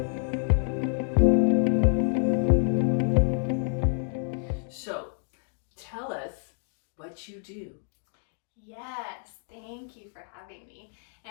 So, tell us what you do. Yes, thank you for having me.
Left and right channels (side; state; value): right; silent; 58 dB below the other